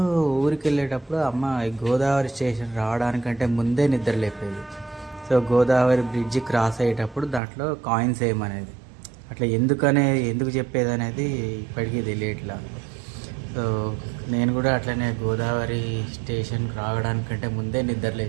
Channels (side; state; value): left; drops out; at 7.4 s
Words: ఊరికి వెళ్ళేటప్పుడు అమ్మ గోదావరి స్టేషన్ రావడానికంటే ముందే నిద్ర లేపేది. సో గోదావరి బ్రిడ్జ్ క్రాస్ అయ్యేటప్పుడు దాంట్లో కాయిన్స్ వేయమనేది. అట్లా ఎందుకు చెప్పేది అనేది ఇప్పటికీ తెలియట్లా. సో నేను కూడా అట్లనే గోదావరి స్టేషన్కి రావడానికంటే ముందే నిద్ర